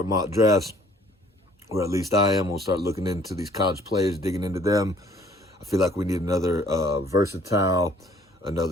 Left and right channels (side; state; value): both; normal; correlation 0.59